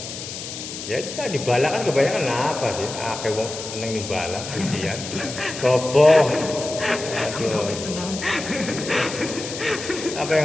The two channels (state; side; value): noise; left; hiss, 9 dB below the sound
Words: Ya itu kan dibalak kan kebanyakan apa sih? Akeh wong seneng dibalak ujian. Sopo? Aduh. Apa